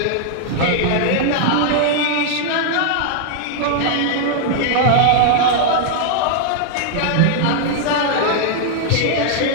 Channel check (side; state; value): both; different; correlation -0.01